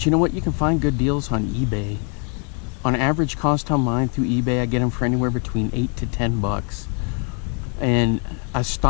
you know what? You can find good deals on eBay. On average cost on mine through eBay, I get them for anywhere between $8 to $10. And I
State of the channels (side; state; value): right; quieter; 38.8 dB